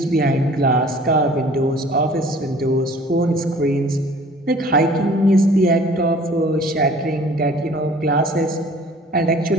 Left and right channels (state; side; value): normal; both; correlation 0.51